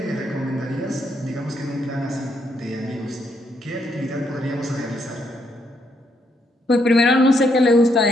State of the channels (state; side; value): normal; both; correlation 0.75